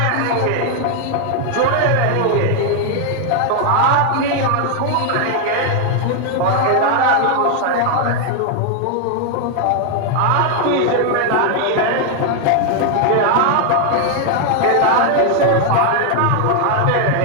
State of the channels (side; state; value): both; different; correlation 0.00